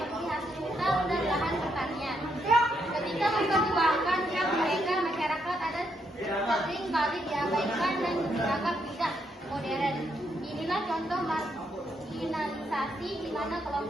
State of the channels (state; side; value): normal; both; correlation 0.77